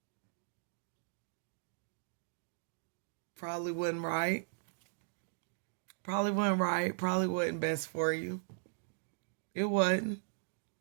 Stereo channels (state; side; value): silent; left; digital silence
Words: probably wasn't right. Probably wasn't right. Probably wasn't best for you. It wasn't.